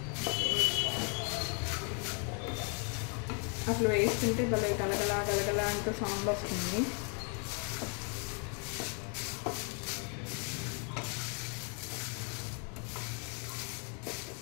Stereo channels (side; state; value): right; quieter; 38.4 dB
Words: అసలు వేస్తుంటే భలే గలగలా గలగలా అంటూ సౌండ్ వస్తుంది.